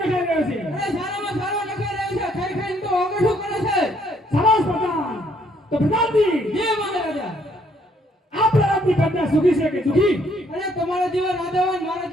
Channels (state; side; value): normal; both; correlation 0.67